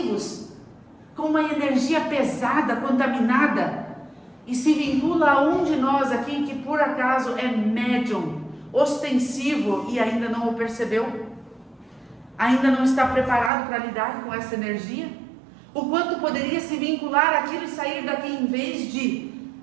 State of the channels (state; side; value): drops out; left; at 13.5 s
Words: com uma energia pesada, contaminada, e se vincula a um de nós aqui que por acaso é médium, ostensivo e ainda não o percebeu, ainda não está preparado para lidar com essa energia, o quanto poderia se vincular aquilo e sair daqui em vez de